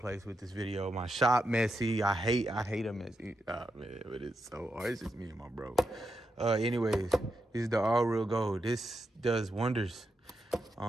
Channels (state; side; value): normal; both; correlation 0.85